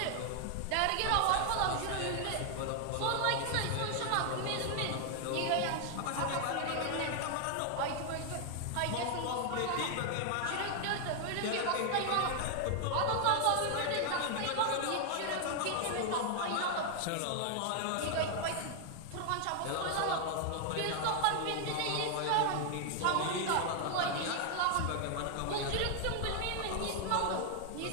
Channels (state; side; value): different; both; correlation 0.00